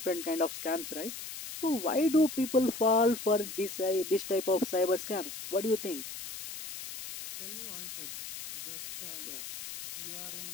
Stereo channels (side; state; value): left; noise; hiss, 8 dB below the sound